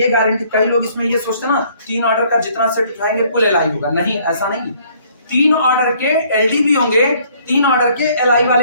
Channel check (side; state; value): both; inverted; correlation -0.61